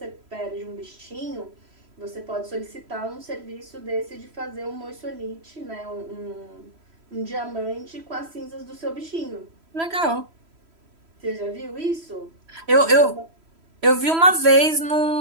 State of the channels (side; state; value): left; late; 3.1 ms